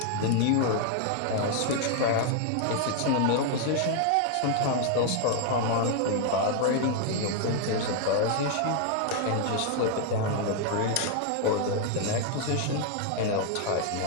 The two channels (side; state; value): both; different; correlation 0.00